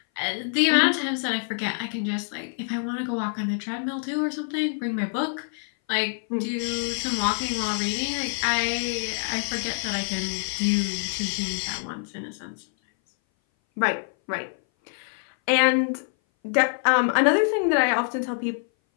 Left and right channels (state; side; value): silent; right; 59 dB below the other